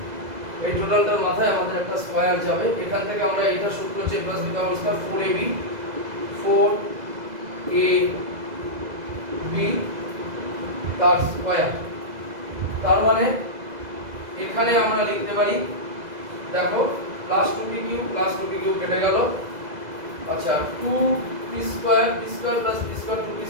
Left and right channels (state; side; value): late; left; 2.0 ms